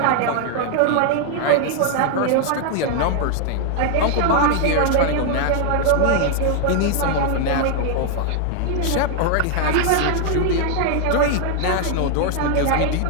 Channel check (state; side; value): different; both; correlation 0.00